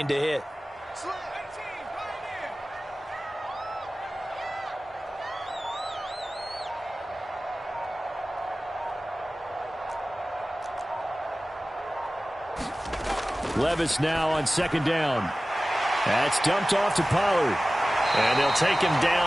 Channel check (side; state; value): both; normal; correlation 0.97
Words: to hit. Levis now on 2nd down. That's dumped off to Pollard. And they'll take him